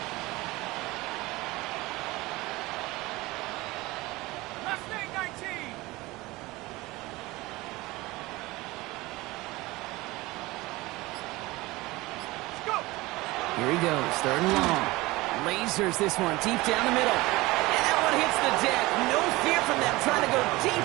Here he goes, 3rd and long. Lasers this one deep down the middle. And that one hits the deck. No fear from them trying to go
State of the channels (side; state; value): left; quieter; 20.7 dB